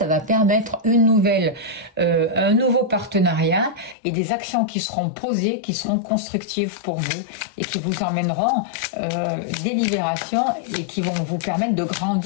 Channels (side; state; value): right; drops out; at 4.0 s